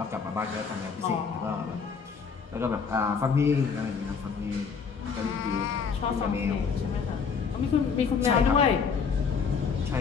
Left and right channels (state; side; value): quieter; right; 5.8 dB